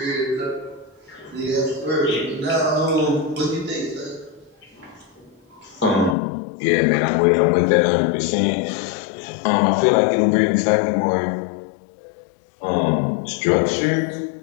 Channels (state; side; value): drops out; right; at 6.2 s